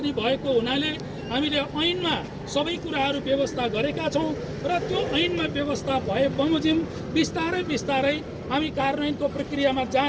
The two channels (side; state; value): both; identical; correlation 1.00